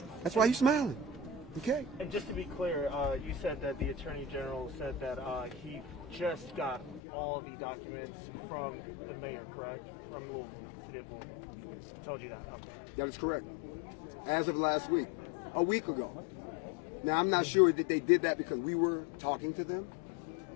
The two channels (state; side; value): drops out; right; at 7.0 s